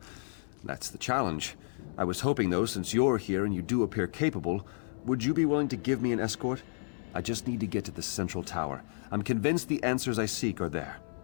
that's the challenge. I was hoping, though, since you're here and you do appear capable, would you be willing to give me an escort? I just need to get to the central tower. I'm convinced the answers I seek are there.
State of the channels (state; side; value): silent; right; 57 dB below the other